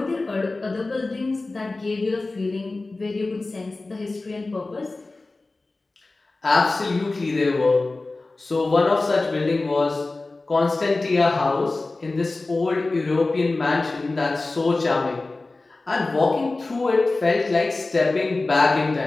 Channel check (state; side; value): quieter; right; 3.3 dB